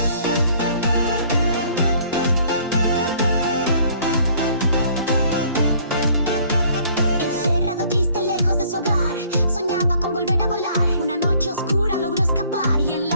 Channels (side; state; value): both; inverted; correlation -0.58